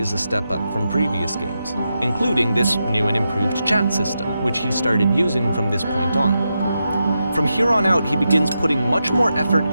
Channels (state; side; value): inverted; both; correlation -0.87